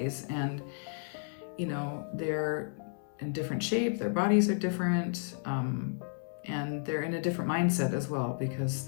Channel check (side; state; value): right; silent; 56 dB below the other